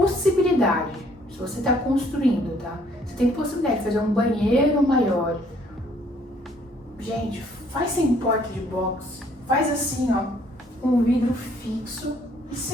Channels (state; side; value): normal; both; correlation 0.63